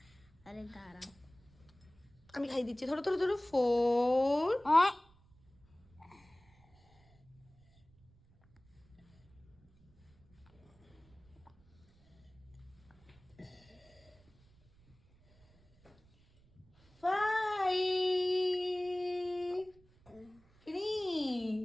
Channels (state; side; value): noise; right; rumble, 29 dB below the sound